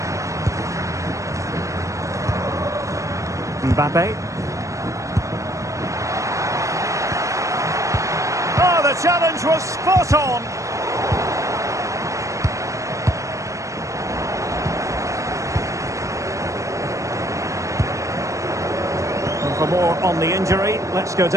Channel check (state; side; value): late; left; 0.15 ms